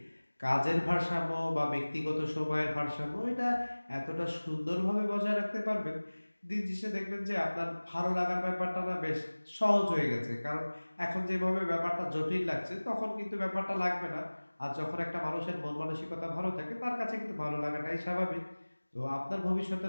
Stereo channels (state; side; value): inverted; both; correlation -1.00